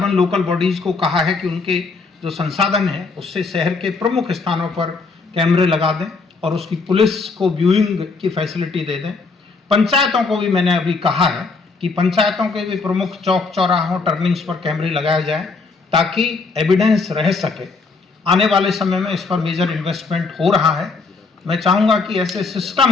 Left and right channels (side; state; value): right; quieter; 4.2 dB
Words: लोकल बॉडीज़ को कहा है कि उनके जो संसाधन है उससे शहर के प्रमुख स्थानों पर कैमरे लगा दें और उसकी पुलिस को व्यूइंग की फैसिलिटी दे दें। पंचायतों को भी मैंने अभी कहा है कि पंचायतों के भी प्रमुख चौक चौराहों टर्निंग्स पर कैमरे लगाए जाएं ताकि एविडेंस रह सके। आने वाले समय में इस पर मेजर इन्वेस्टमेंट हो रहा है। मैं चाहूँगा कि ऐसे